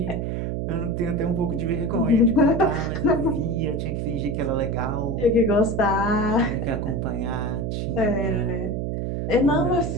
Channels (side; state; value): right; noise; hum, 2 dB below the sound